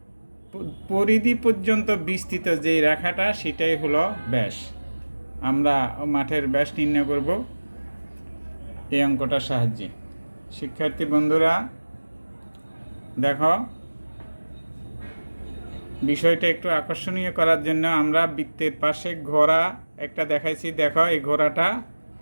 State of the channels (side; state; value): both; inverted; correlation -1.00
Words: পরিধি পর্যন্ত বিস্তৃত যে রেখাটা সেটাই হলো ব্যাস। আমরা মাঠের ব্যাস নির্ণয় করব এই অঙ্কটার সাহায্যে। শিক্ষার্থী বন্ধুরা দেখো, বিষয়টা একটু আকর্ষণীয় করার জন্য আমরা বৃত্তের পাশে ঘোড়া একটা দেখাইছি। দেখো এই ঘোড়াটা